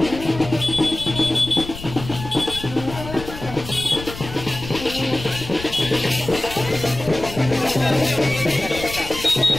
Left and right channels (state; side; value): noise; left; rumble, 12 dB below the sound